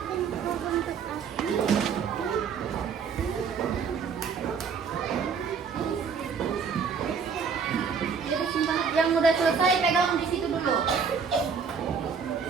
Yang udah selesai pegang di situ dulu.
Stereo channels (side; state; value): left; quieter; 6.0 dB